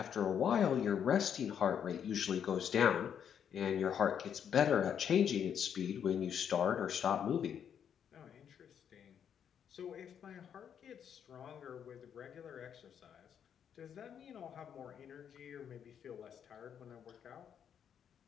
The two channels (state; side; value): quieter; right; 8.4 dB